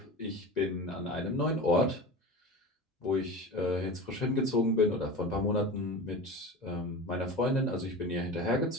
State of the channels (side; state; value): both; normal; correlation 0.31